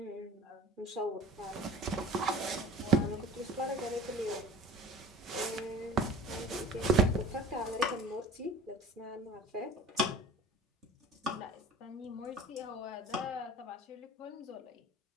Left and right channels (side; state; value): both; normal; correlation 0.42